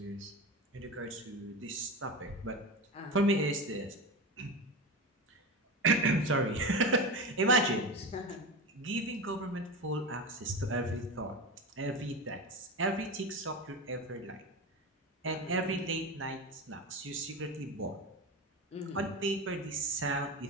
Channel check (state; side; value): normal; both; correlation 0.23